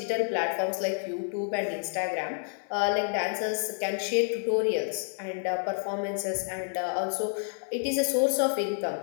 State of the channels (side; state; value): right; silent; 58 dB below the other